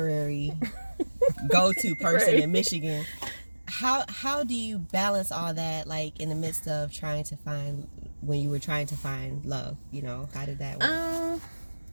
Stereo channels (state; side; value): inverted; both; correlation -1.00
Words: go-to person in Michigan. How do you balance all that, like, in the midst of when you were trying to find love? You know, how did that work?